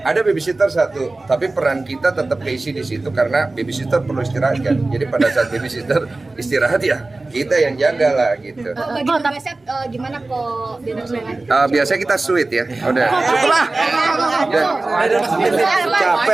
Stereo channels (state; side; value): quieter; left; 3.2 dB